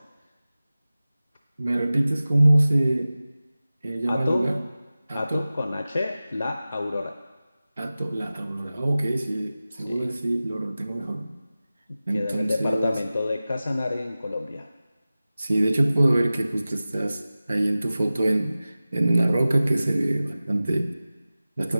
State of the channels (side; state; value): both; inverted; correlation -0.96